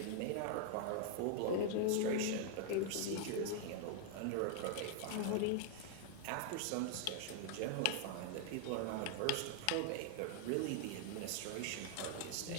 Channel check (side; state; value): both; different; correlation -0.01